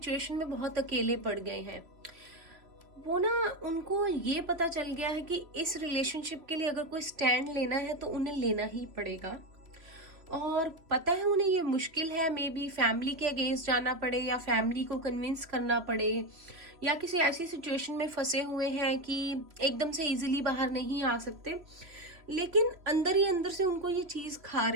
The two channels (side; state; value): left; late; 3.0 ms